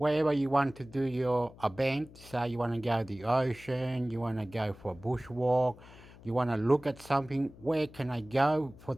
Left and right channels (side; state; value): left; noise; hum, 21 dB below the sound